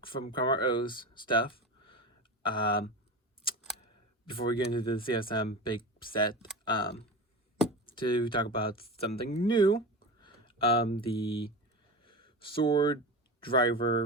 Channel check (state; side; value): normal; both; correlation 0.27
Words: from Karma O's stuff. Before we get into the CSM big set, to talk about something new, the Sword